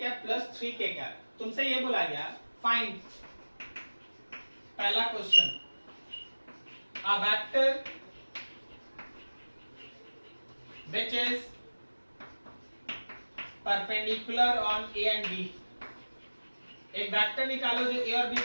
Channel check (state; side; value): inverted; both; correlation -1.00